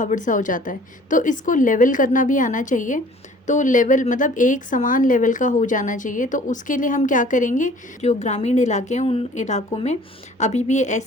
सा हो जाता है, तो इसको लेवल करना भी आना चाहिए। तो लेवल मतलब एक समान लेवल का हो जाना चाहिए। तो उसके लिए हम क्या करेंगे, जो ग्रामीण इलाके हैं उन इलाकों में अभी भी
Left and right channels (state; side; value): normal; both; correlation 0.51